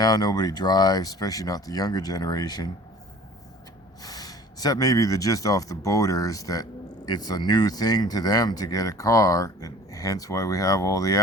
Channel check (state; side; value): normal; both; correlation 0.47